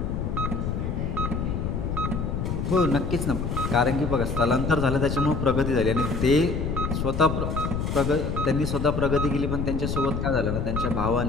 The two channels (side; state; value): left; noise; rumble, 2 dB below the sound